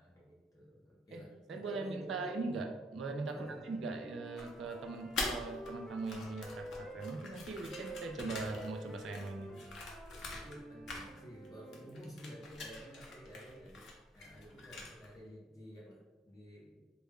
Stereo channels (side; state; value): both; normal; correlation 0.63